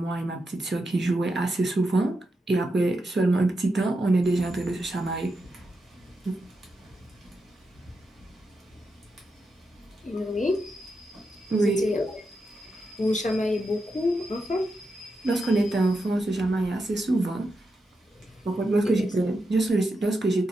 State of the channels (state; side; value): normal; both; correlation 0.86